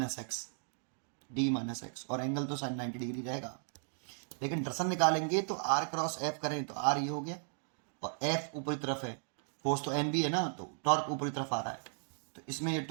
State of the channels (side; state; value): left; silent; digital silence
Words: X, D minus x, और एंगल तो साइन 90 डिग्री रहेगा। लेकिन दर्शन निकालेंगे तो आर क्रॉस एफ करें तो आर ये हो गया और एफ ऊपरी तरफ है, फोर्स तो एन बी है ना, तो टॉर्क ऊपरी तरफ आ रहा है, तो इसमें ये